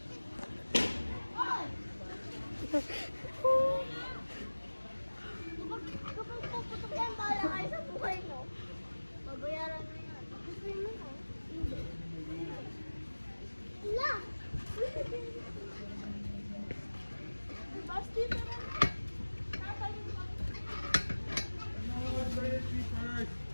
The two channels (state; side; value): inverted; both; correlation -1.00